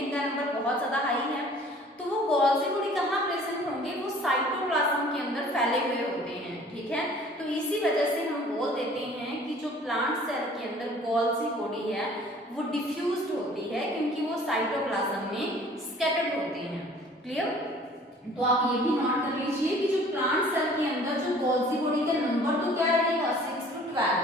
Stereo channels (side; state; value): both; normal; correlation 0.51